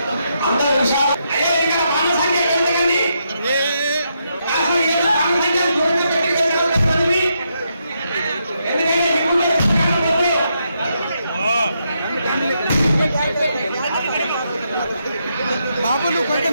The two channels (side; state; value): both; inverted; correlation -0.80